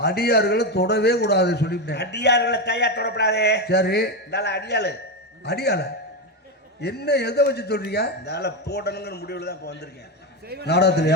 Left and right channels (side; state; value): both; normal; correlation 0.12